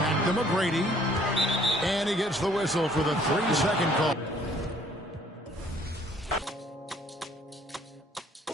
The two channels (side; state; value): both; normal; correlation 0.60